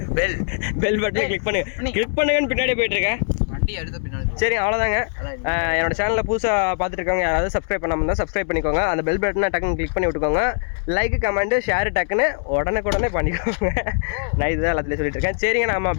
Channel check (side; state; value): right; silent; 65 dB below the other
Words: பெல் பட்டனை கிளிக் பண்ணுங்க. கிளிக் பண்ணுங்கன்னு பின்னாடி போயிட்டு இருக்கேன். வண்டி எடுத்து பின்னாடி. சரி அவ்வளோதாங்க. என்னோட சேனலில் புதுசாக பார்த்துட்டு இருக்கவங்க யாராவது சப்ஸ்கிரைப் பண்ணாமல் இருந்தால் சப்ஸ்கிரைப் பண்ணிக்கோங்க. அந்த பெல் பட்டனை டக்குன்னு கிளிக் பண்ணி விட்டுக்கோங்க. லைக் கமெண்ட்டு ஷேர் டக்குன்னு உடனே பண்ணிக்கோங்க. நான் இதுதான் எல்லாத்துலேயும் சொல்லிட்டு இருக்கேன். சரிங்க நம்ம